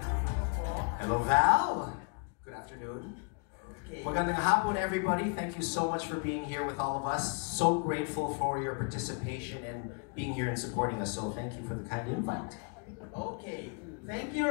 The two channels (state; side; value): quieter; right; 37.0 dB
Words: Hello, Val. Good afternoon. Okay. Magandang hapon, everybody. Thank you so much for being here with all of us. So grateful for your participation and being here and supporting us. So thank you for the kind invite. Okay. Thank